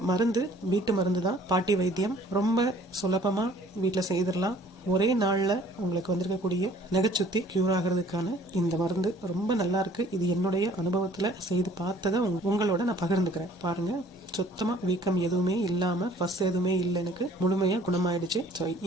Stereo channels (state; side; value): normal; both; correlation 0.54